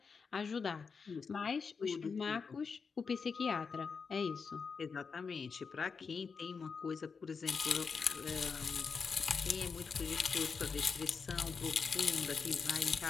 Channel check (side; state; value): right; quieter; 5.4 dB